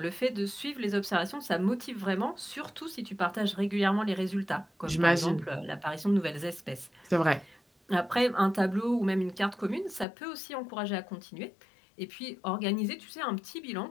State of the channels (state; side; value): drops out; right; at 10.1 s